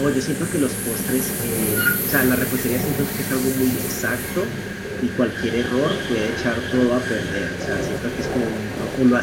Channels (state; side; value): identical; both; correlation 1.00